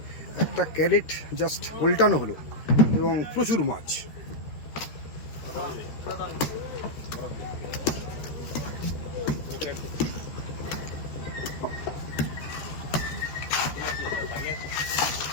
একটা ক্যারেট জাস্ট উল্টানো হলো এবং প্রচুর মাছ।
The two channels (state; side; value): late; right; 13 ms